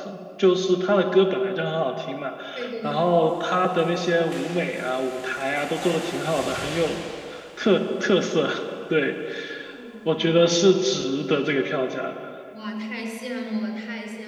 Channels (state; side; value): identical; both; correlation 1.00